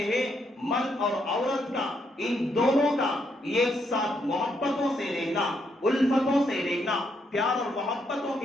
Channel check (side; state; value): both; normal; correlation 0.76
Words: ہے مرد اور عورت کا، ان دونوں کا ایک ساتھ محبتوں سے رہنا، الفتوں سے رہنا، پیار اور محبتوں